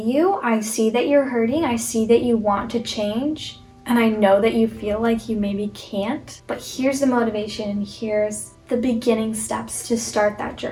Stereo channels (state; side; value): identical; both; correlation 1.00